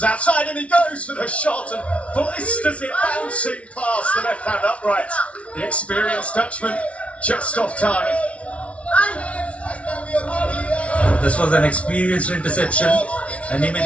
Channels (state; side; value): late; right; 0.063 ms